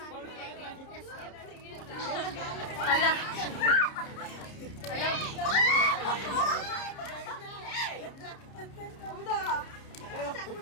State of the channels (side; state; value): right; late; 30 ms